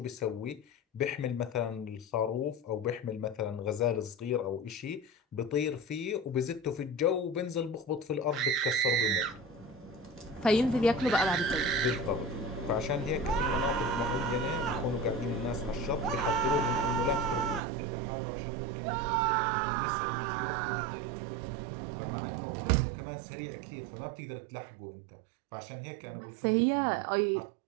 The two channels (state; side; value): drops out; left; at 17.6 s